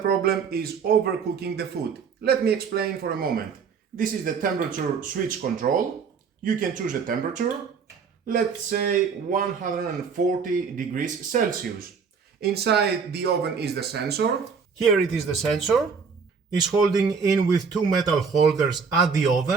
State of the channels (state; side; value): quieter; left; 5.8 dB